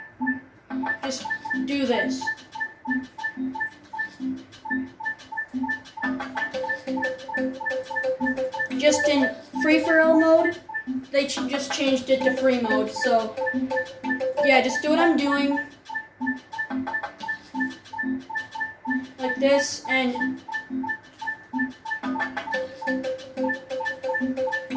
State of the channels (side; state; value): both; identical; correlation 1.00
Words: Just do this. Just in free-for-all mode, they just changed it to free mode, so just do what I'm doing, like this, and